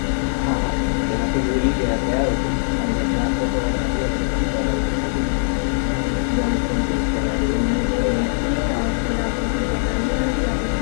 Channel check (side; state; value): right; silent; digital silence